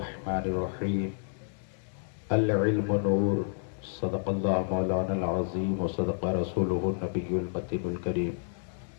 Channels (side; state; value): right; silent; 56 dB below the other